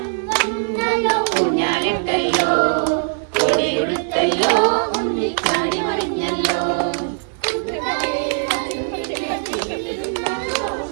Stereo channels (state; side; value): silent; left; digital silence